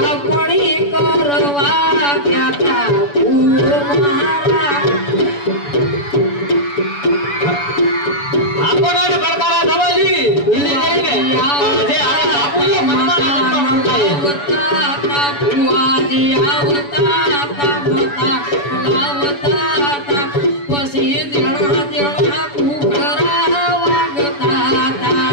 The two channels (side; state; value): right; late; 7.0 ms